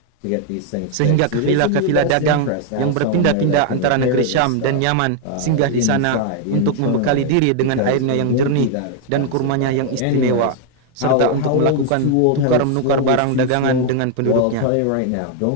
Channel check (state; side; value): different; both; correlation 0.00